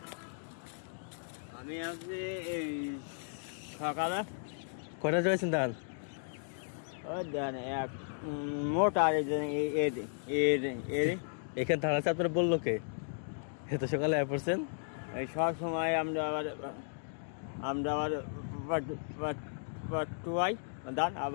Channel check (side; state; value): right; silent; digital silence